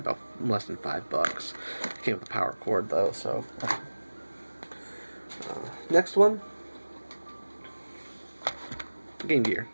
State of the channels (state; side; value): inverted; both; correlation -1.00